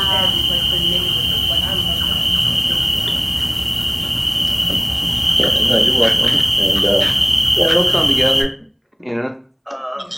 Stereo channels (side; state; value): both; identical; correlation 1.00